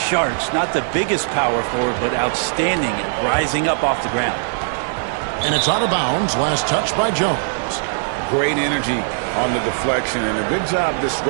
charts. Not the biggest power forward, but outstanding at rising up off the ground. And it's out of bounds. Last touch by Jones. Great energy on the deflection and a good job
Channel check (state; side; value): silent; left; digital silence